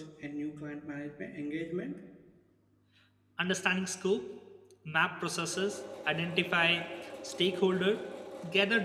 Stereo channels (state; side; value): identical; both; correlation 1.00